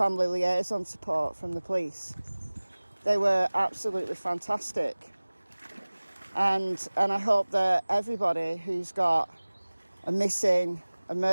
liaison support from the police. They were absolutely fantastic. And I hope that everybody who's got a missing, a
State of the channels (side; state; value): both; inverted; correlation -1.00